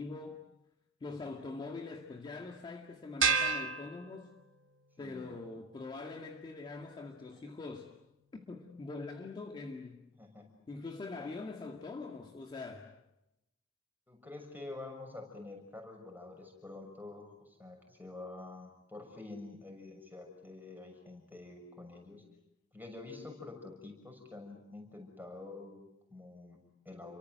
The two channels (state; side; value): normal; both; correlation 0.26